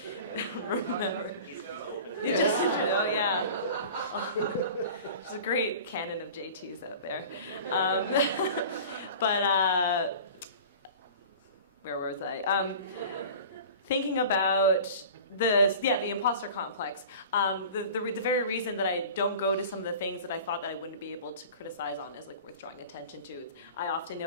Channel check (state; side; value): inverted; both; correlation -0.40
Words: remember. You just, yeah. There's a great canon of JTs out there. But where was I? Thinking about the imposter complex. The very reason that I don't go to some of the things that I thought that I wouldn't be able to criticize on is like worth drawing attention to. I often